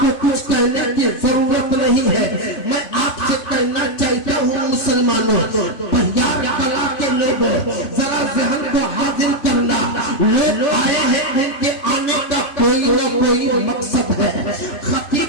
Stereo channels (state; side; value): late; right; 3.4 ms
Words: कुछ कहने की जरूरत नहीं है। मैं आपसे कहना चाहता हूँ मुसलमानों, बहियार कला के लोगों, जरा ज़हन को हाजिर करना। लोग आए हैं, उनके आने का कोई न कोई मकसद है।